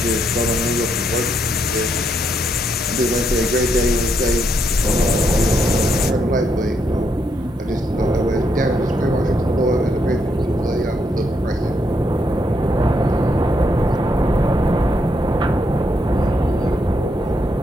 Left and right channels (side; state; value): both; normal; correlation 0.77